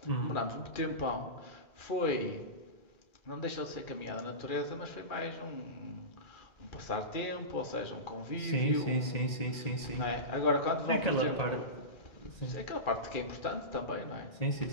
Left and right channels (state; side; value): late; right; 1.8 ms